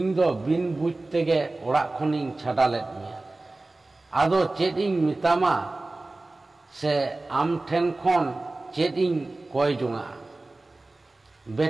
दो बिन बुझ तेगे ओड़ा खनिं छाड़ा लेद मिया आदो चेद इं मितामा से आम ठेन खन चेद इं कोय जुंगा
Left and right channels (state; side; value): quieter; left; 3.0 dB